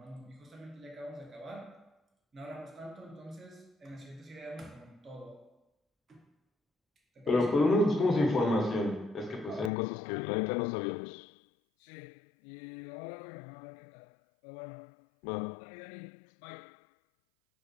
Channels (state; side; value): drops out; right; at 9.7 s